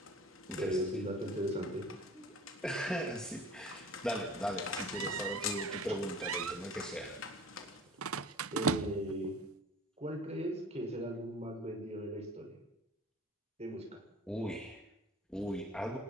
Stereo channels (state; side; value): normal; both; correlation 0.43